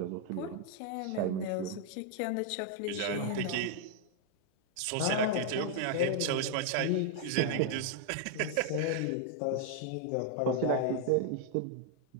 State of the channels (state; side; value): different; both; correlation 0.00